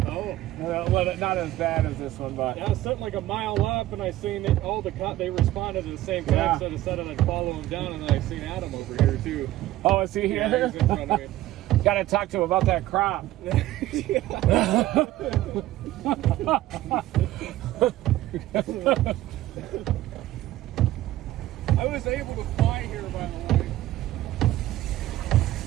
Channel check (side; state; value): left; quieter; 15.2 dB